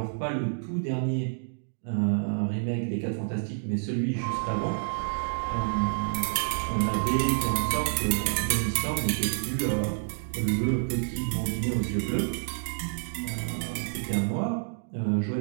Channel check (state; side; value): silent; left; digital silence